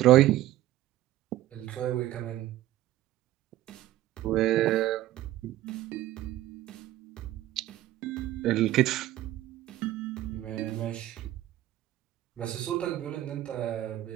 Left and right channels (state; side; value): quieter; left; 14.8 dB